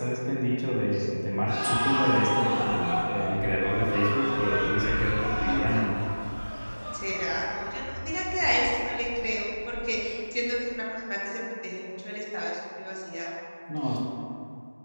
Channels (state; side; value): inverted; both; correlation -1.00